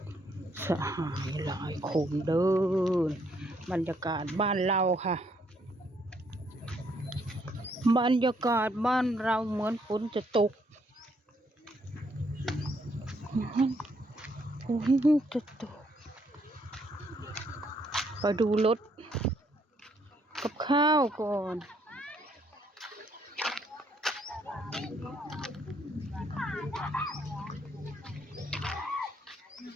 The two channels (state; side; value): normal; both; correlation 0.71